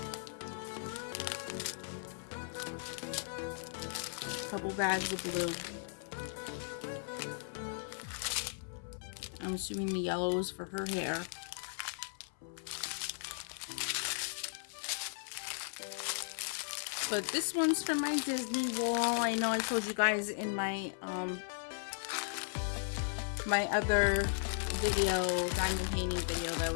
Couple bags of blue. I'm assuming the yellow is for her hair. But this one's for my Disney wall. I know I told you guys in my my other video, diamond painting video, that I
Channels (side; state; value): right; silent; 53 dB below the other